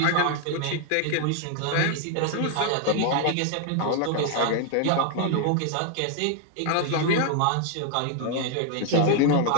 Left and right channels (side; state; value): both; different; correlation 0.00